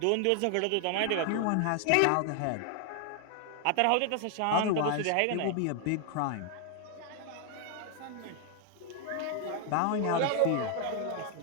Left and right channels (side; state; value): both; different; correlation 0.00